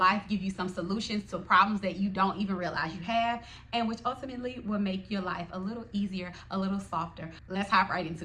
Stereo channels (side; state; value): both; identical; correlation 1.00